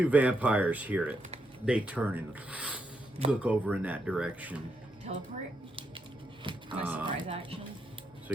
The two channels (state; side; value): normal; both; correlation 0.81